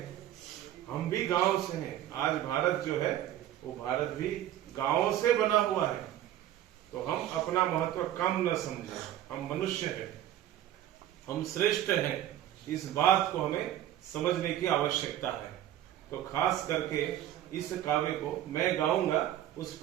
हम भी गांव से हैं। आज भारत जो है वो भारत भी गांव से बना हुआ है। तो हम अपना महत्व कम न समझें। हम मनुष्य हैं, हम श्रेष्ठ हैं, इस बात को हमें समझने की आवश्यकता है। तो खास करके इस काव्य को मैं गाऊंगा, उस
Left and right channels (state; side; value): quieter; left; 12.4 dB